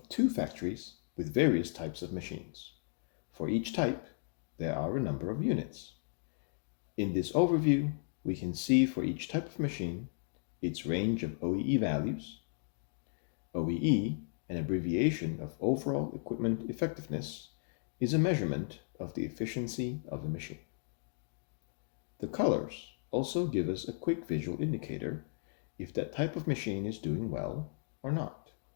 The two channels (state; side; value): silent; right; digital silence